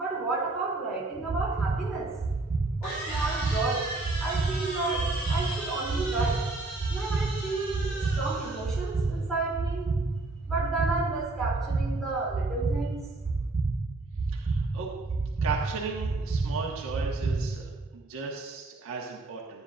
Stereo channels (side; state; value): left; quieter; 3.1 dB